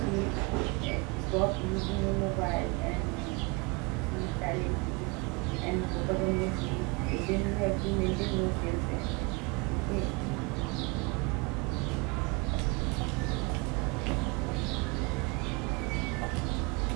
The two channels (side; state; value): left; quieter; 28.2 dB